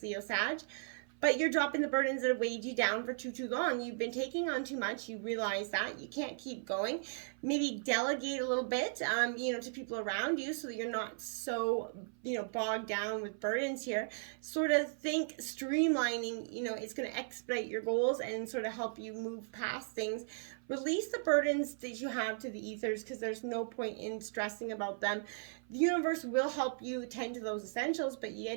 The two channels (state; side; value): silent; left; 53 dB below the other